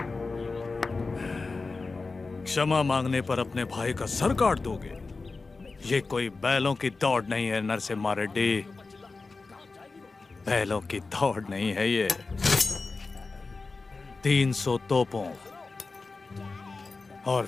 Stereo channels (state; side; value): quieter; right; 3.9 dB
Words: क्षमा मांगने पर अपने भाई का सर काट दोगे? ये कोई बैलों की दौड़ नहीं है नरसिम्हा रेड्डी, बैलों की दौड़ नहीं है ये। 300 तोपों और